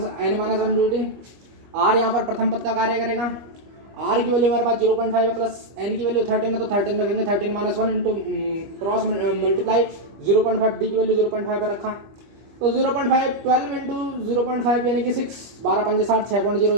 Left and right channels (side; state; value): left; late; 25 ms